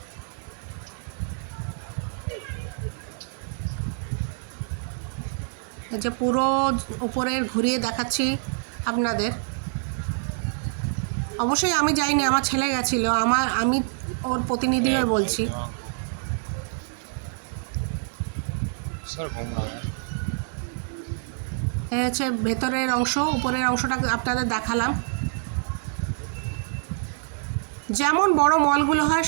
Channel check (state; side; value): silent; left; digital silence